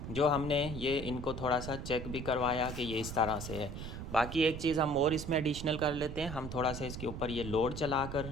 जो हमने ये इनको थोड़ा सा चेक भी करवाया कि ये इस तरह से है। बाकी एक चीज़ हम और इसमें एडिशनल कर लेते हैं, हम थोड़ा सा इसके ऊपर ये लोड चला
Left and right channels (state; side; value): noise; right; rumble, 8 dB below the sound